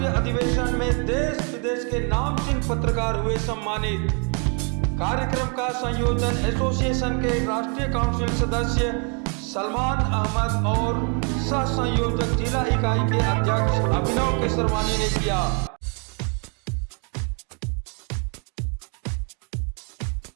अधिवेशन में देश विदेश के नामचीन पत्रकार हुए सम्मानित। कार्यक्रम का संयोजन एसोसिएशन के राष्ट्रीय काउंसिल सदस्य सलमान अहमद और सह संयोजक जिला इकाई के अध्यक्ष अभिनव केसरवानी ने किया।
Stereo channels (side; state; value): left; quieter; 38.3 dB